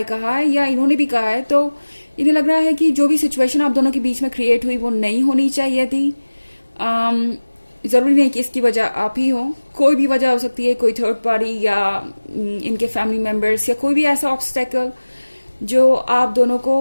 कहा है या इन्होंने भी कहा है तो इन्हें लग रहा है कि जो भी सिचुएशन आप दोनों के बीच में क्रिएट हुई वो नहीं होनी चाहिए थी। ज़रूरी नहीं कि इसकी वजह आप ही हो, कोई भी वजह हो सकती है, कोई थर्ड पार्टी या इनके फैमिली मेम्बर्स या कोई भी ऐसा ऑब्स्टेकल जो आप दोनों को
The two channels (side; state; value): both; inverted; correlation -1.00